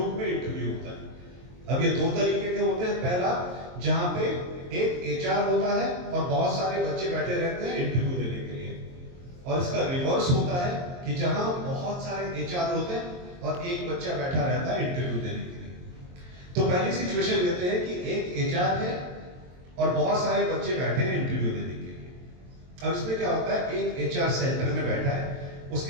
में इंटरव्यू होता है। अब ये दो तरीके के होते हैं। पहला, जहां पे एक एचआर होता है और बहुत सारे बच्चे बैठे रहते हैं इंटरव्यू देने के लिए, और इसका रिवर्स होता है कि जहां बहुत सारे एचआर होते हैं और एक बच्चा बैठा रहता है इंटरव्यू देने के लिए। तो पहली सिचुएशन लेते हैं कि एक एचआर है और बहुत सारे बच्चे बैठे हैं इंटरव्यू देने के लिए। अब इसमें क्या होता है, एक एचआर सेंटर में बैठा है,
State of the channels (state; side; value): late; left; 23 ms